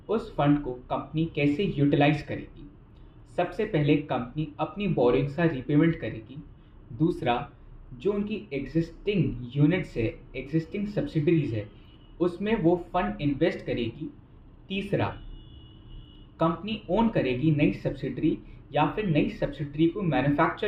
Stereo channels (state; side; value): identical; both; correlation 1.00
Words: उस फंड को कंपनी कैसे यूटिलाइज करेगी। सबसे पहले कंपनी अपनी बोरिंग्स का रीपेमेंट करेगी। दूसरा, जो उनकी एग्जिस्टिंग यूनिट्स है, एग्जिस्टिंग सब्सिडरीज है, उसमें वो फंड इन्वेस्ट करेगी। तीसरा, कंपनी ओन करेगी नई सब्सिडरी या फिर नई सब्सिडरी को